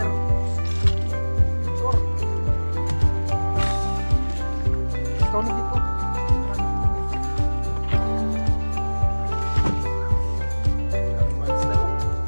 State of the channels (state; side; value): inverted; both; correlation -1.00